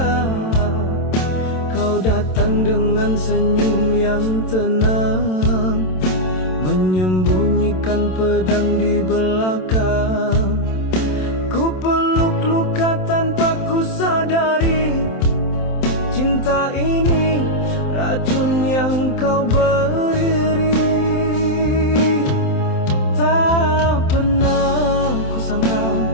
Kau datang dengan senyum yang tenang, menyembunyikan pedang di belakang. Ku peluk luka tanpa ku sadari, cinta ini racun yang kau beri. Tak pernah ku sangka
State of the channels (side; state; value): right; late; 27 ms